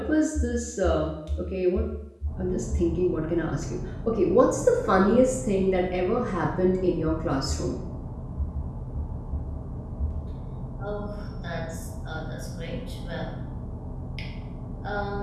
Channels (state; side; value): identical; both; correlation 1.00